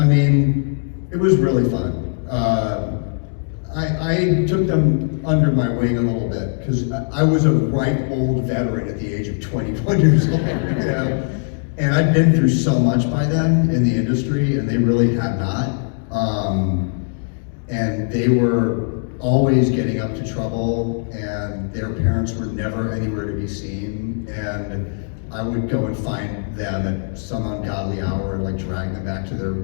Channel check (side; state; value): right; silent; digital silence